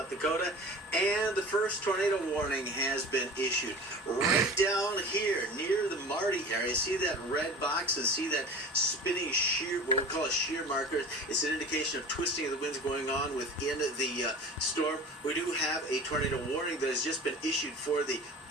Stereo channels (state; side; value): normal; both; correlation 0.38